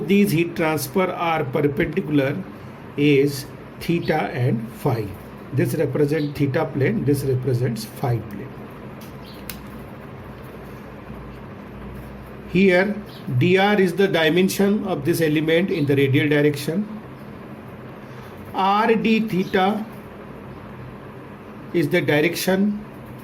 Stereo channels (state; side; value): identical; both; correlation 1.00